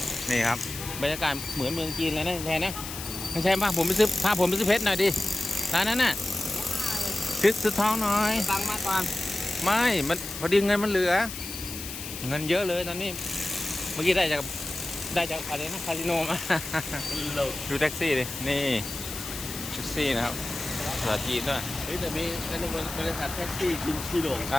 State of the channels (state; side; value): noise; left; hiss, 9 dB below the sound